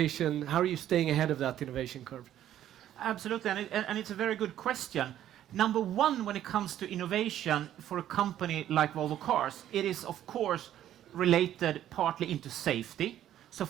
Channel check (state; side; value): quieter; left; 11.7 dB